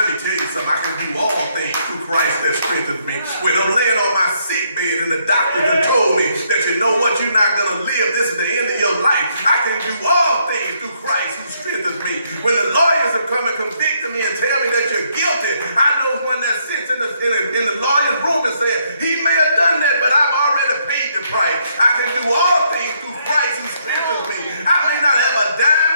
me tell you something. I can do all things through Christ that strengthens me. When I'm laying on my sick bed and the doctor done told me that you know what, you're not going to live. This is the end of your life. I can do all things through Christ who strengthens me. When the lawyers have come and convicted me and tell me that you're guilty, I know one that sits in the lawyer's room and says, he may have done that, but I've already paid the price. I can do all things through Christ who strengthens me. I may not have a dime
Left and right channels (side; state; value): both; inverted; correlation -0.72